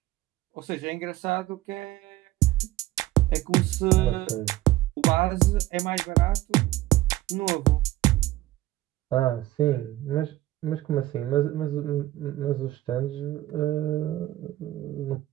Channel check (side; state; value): left; quieter; 16.1 dB